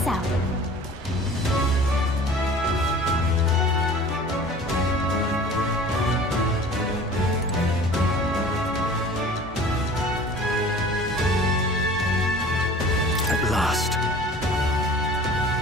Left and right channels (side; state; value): both; normal; correlation 0.44